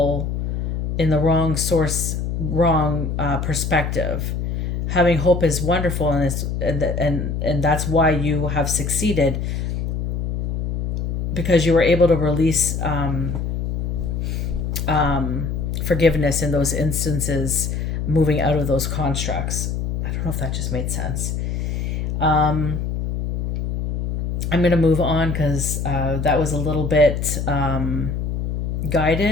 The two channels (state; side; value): noise; left; hum, 2 dB below the sound